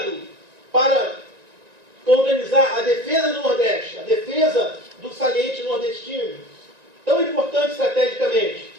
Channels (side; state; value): left; late; 1.9 ms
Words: para organizar a defesa do Nordeste, a defesa do saliente nordestino, tão importante estrategicamente.